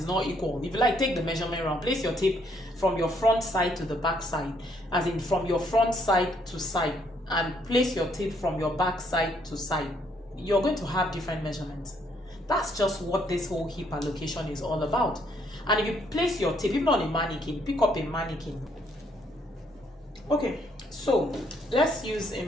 not equal. If you like, take the measurement round, place your tape from your front side to the back side, as in from your front side to side, and place your tape from your back side to side. You're going to have different measurements. That's just what this whole hip allocation is all about. And if you place your tape, even on a mannequin, pick up a mannequin. Okay, so let's use a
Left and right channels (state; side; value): normal; both; correlation 0.70